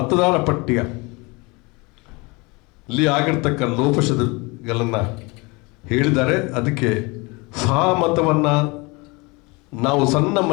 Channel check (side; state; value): right; quieter; 26.5 dB